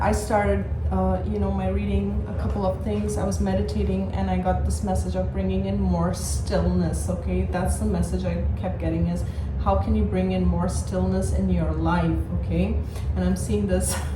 I started my reading, a couple of things. I was meditating and I got this message of bringing in more stillness. Okay, that's the message I kept getting, is how can you bring in more stillness in your life? Okay, and I'm seeing this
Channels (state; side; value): identical; both; correlation 1.00